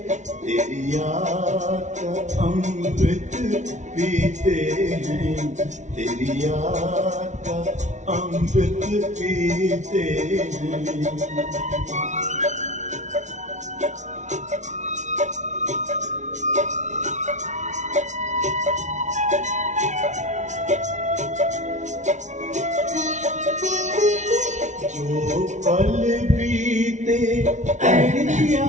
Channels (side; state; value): left; late; 0.35 ms